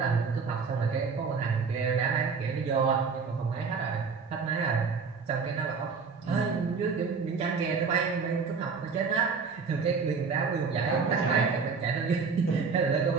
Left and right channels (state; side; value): quieter; left; 5.2 dB